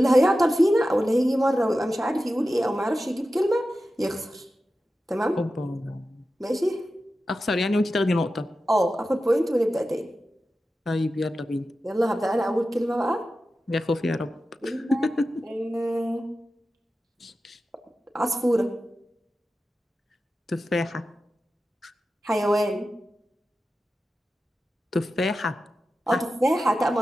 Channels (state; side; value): normal; both; correlation 0.93